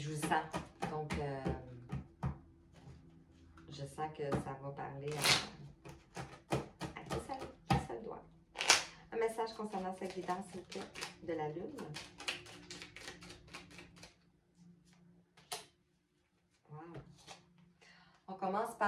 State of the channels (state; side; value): identical; both; correlation 1.00